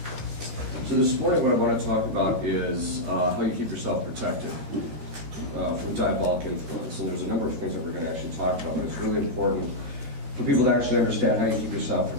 So this morning what I want to talk about is how you keep yourself protected from diabolic influence. And there's a number of things that we're going to actually talk about, but it's really important for people to actually understand how you keep yourself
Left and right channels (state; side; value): late; left; 13 ms